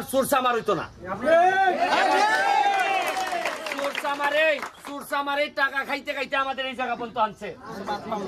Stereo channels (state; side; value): identical; both; correlation 1.00